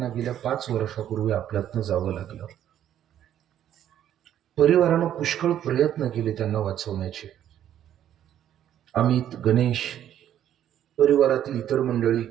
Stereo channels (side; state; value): left; quieter; 10.9 dB